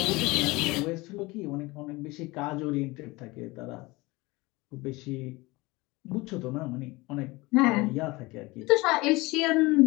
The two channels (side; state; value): right; quieter; 22.6 dB